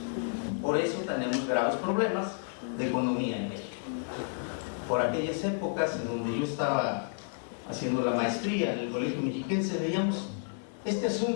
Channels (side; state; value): right; silent; 57 dB below the other